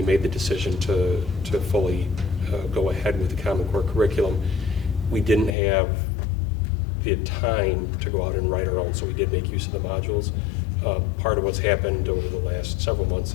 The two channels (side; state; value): right; drops out; at 5.6 s